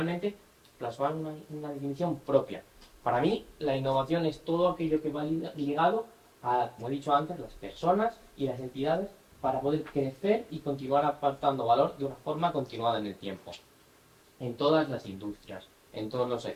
plasmar una definición propia. Para mí, la innovación es todo aquello que va ligado a, como he dicho antes, las personas y las entidades para poder crecer y continuar aportando valor de una forma continuada en el tiempo. En todas las industrias, en todos los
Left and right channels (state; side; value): identical; both; correlation 1.00